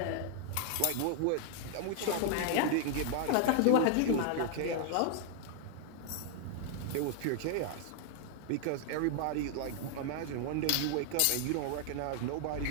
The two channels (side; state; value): both; different; correlation 0.00